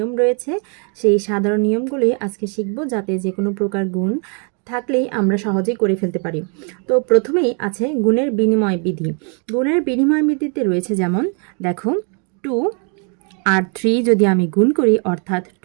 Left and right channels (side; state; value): left; quieter; 38.7 dB